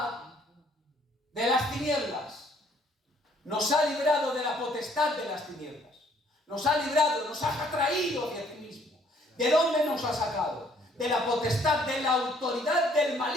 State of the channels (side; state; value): both; normal; correlation 0.63